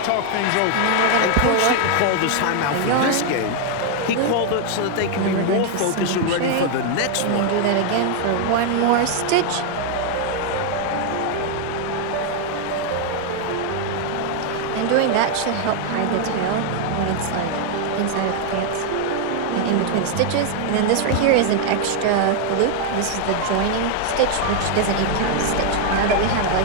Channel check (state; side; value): different; both; correlation 0.00